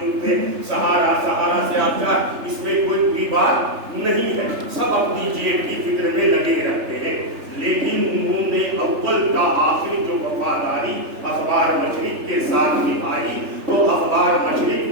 سے سہارا سے آچار، اس میں کوئی بھی بات نہیں ہے، سب اپنی جیب کی فکر میں لگے رہتے ہیں۔ لیکن انہوں نے اول تا آخر جو وفاداری اخبار مشرق کے ساتھ نبھائی تو اخبار مشرق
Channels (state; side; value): late; left; 3.3 ms